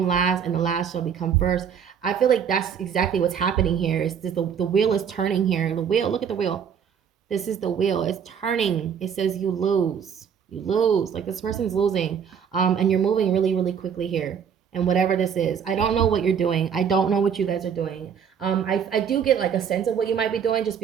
last and the last shall become first. I feel like that's exactly what's happening here. Is the wheel is turning here. The wheel, look at the wheel. This is the wheel. It's turning. It says you lose. You lose. Like, this person's losing. And you're moving really, really quickly here. And whatever this is, I don't know what you're doing. I don't know what you guys are doing. I do get like a sense of what you might be doing, just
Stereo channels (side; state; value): left; quieter; 7.6 dB